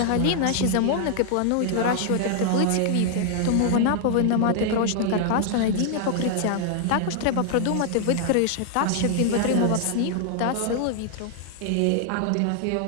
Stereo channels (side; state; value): both; different; correlation -0.01